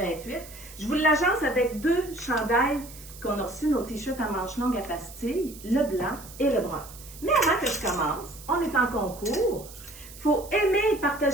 Je vous l'agence avec deux chandails qu'on a reçus, nos t-shirts à manches longues à pastilles, le blanc et le brun. Mais avant que je commence, on est en concours. Faut aimer et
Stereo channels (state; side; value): noise; right; hiss, 17 dB below the sound